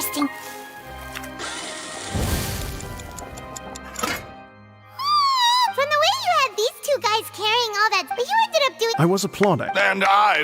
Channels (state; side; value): identical; both; correlation 1.00